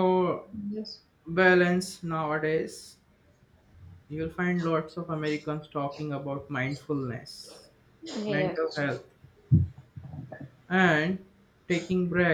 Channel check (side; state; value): both; identical; correlation 1.00